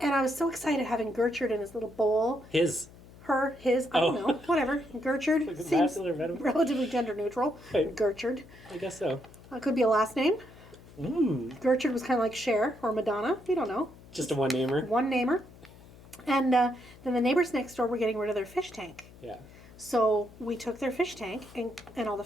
I was so excited having Gertrude in his little bowl. his. Her, his, I don't know, whatever. Gertrude Like a seems masculine or feminine? relatively gender neutral. Right. Gertrude. I guess so. Could be a last name. Mm. Gertrude was kind of like Cher or Madonna. We don't know. Just a one-namer. One namer. And then the neighbors next door were getting rid of their fish tank. Yeah. So we took their fish tank and all the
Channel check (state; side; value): noise; left; hum, 21 dB below the sound